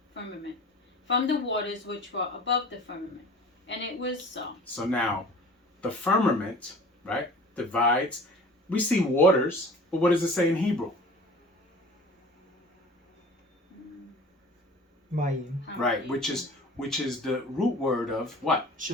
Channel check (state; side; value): normal; both; correlation 0.43